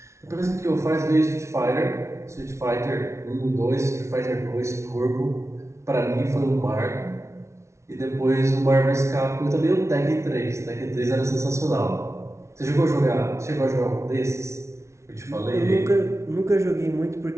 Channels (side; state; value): left; late; 0.13 ms